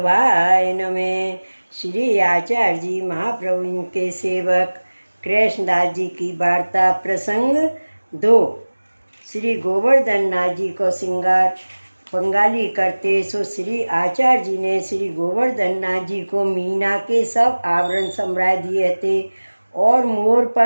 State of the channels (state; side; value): inverted; both; correlation -1.00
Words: नमः। श्री आचार्य जी महाप्रभु के सेवक कृष्णदास जी की वार्ता प्रसंग 2। श्री गोवर्धन नाथ जी को श्रृंगार बंगाली करते सो श्री आचार्य जी ने श्री गोवर्धन नाथ जी को मीना के सब आवरण सम्राय दिए थे और मोर